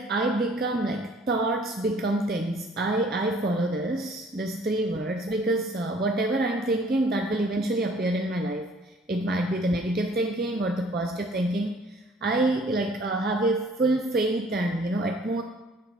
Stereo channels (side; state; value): both; normal; correlation 0.56